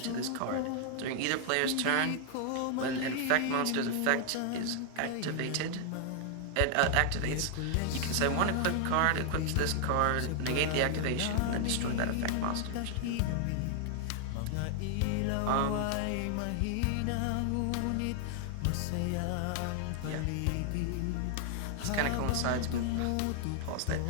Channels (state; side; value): different; both; correlation 0.00